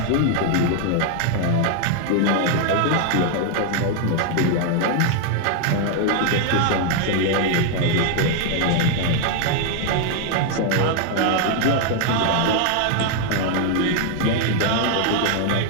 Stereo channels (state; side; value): different; both; correlation 0.01